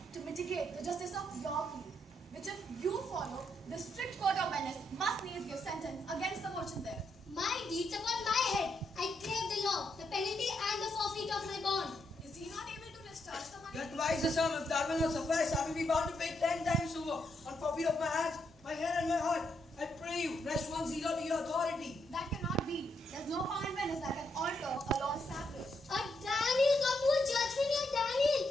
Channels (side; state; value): both; normal; correlation 0.78